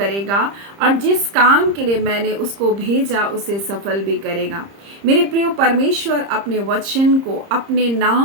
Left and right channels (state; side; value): late; left; 30 ms